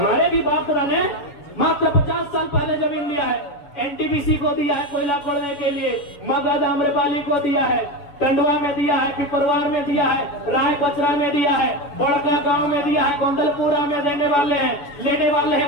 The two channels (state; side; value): late; right; 7.0 ms